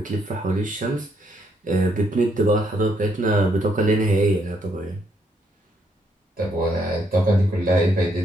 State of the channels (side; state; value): both; normal; correlation 0.73